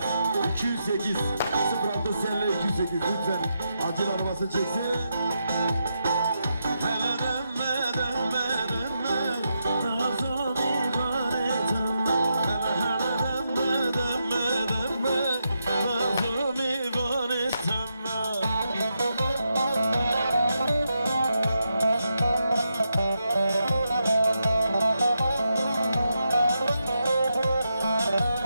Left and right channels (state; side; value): inverted; both; correlation -0.84